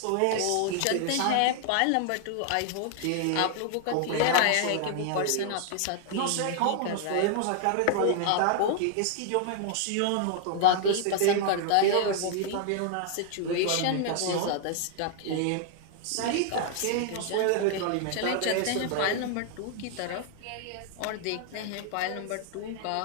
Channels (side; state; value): both; different; correlation 0.00